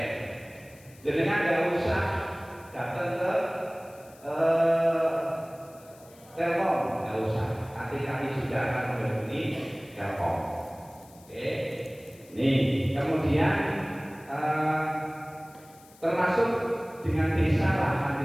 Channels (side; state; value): left; noise; hiss, 25 dB below the sound